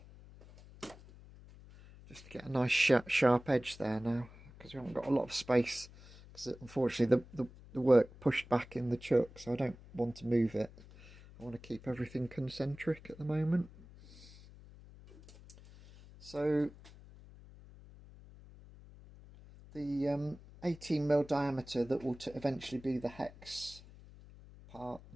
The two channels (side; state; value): left; noise; hum, 20 dB below the sound